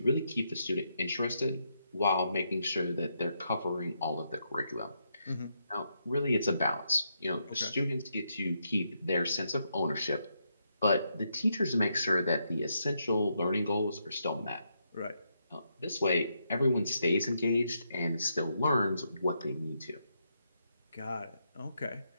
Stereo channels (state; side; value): inverted; both; correlation -0.80